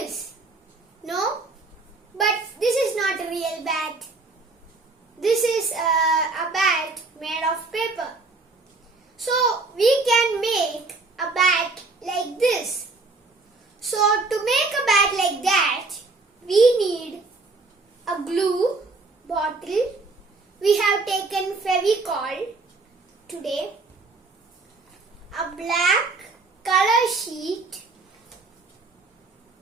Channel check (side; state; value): left; quieter; 3.7 dB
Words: No? But this is not a real bat. This is a bat made of paper. So we can make a bat like this. So to make a bat like that, we need a glue bottle. We have taken Fevicol today, a black color sheet,